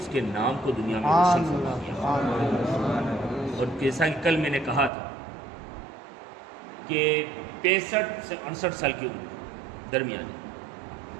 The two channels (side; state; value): left; drops out; at 4.9 s